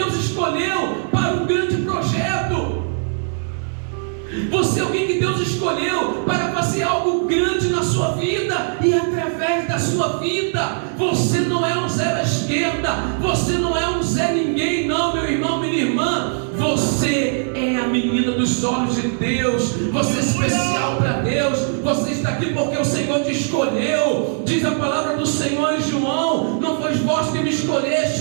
escolheu para um grande projeto. Você é alguém que Deus escolheu para fazer algo grande na sua vida e através da sua vida. Você não é um zero à esquerda, você não é um Zé Ninguém, não, meu irmão, minha irmã. Você é a menina dos olhos de Deus. Você é especial para Deus. Você está aqui porque o Senhor te escolheu. Diz a palavra do Senhor em João: não foi vós que me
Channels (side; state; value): left; silent; 66 dB below the other